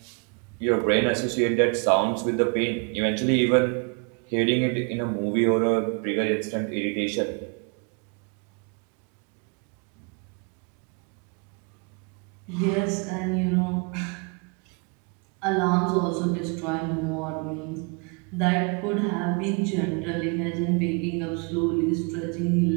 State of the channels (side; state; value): left; quieter; 34.8 dB